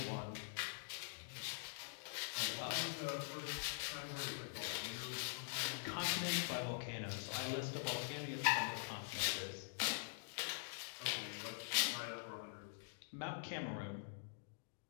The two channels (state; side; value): silent; right; digital silence